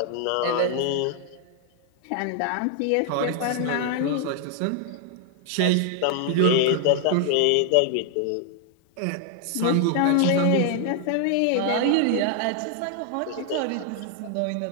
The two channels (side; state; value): both; different; correlation 0.00